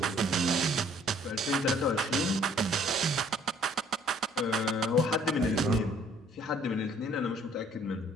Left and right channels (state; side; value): normal; both; correlation 0.59